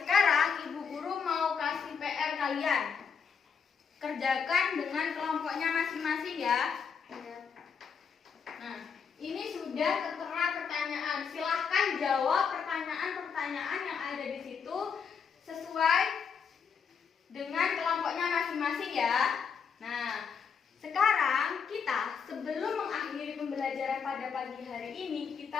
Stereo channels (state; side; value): quieter; right; 6.3 dB